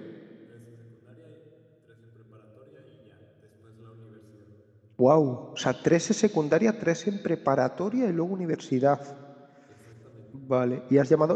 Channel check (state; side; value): identical; both; correlation 1.00